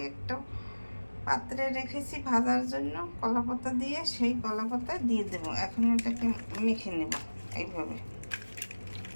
একটা পাত্রে রেখেছি ভাজার জন্য কলাপাতা দিয়ে, সেই কলাপাতা দিয়ে দেব। এখন এটাকে মেখে নেব এইভাবে।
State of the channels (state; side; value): inverted; both; correlation -1.00